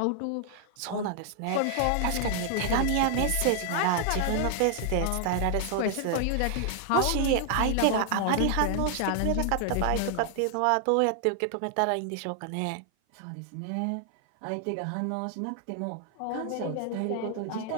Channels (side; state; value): both; different; correlation 0.00